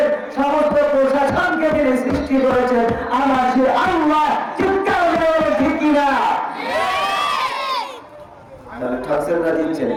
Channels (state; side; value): identical; both; correlation 1.00